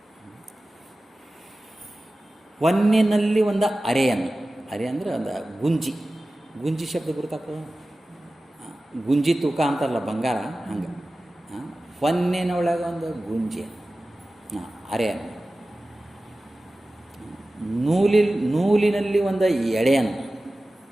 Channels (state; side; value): normal; both; correlation 0.96